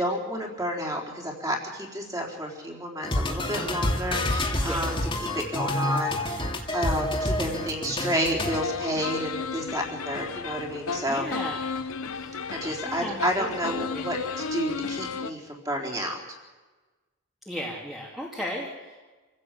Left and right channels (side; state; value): both; normal; correlation 0.39